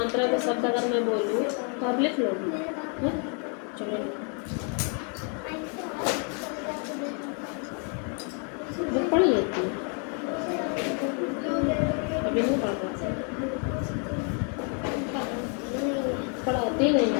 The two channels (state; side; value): quieter; right; 39.6 dB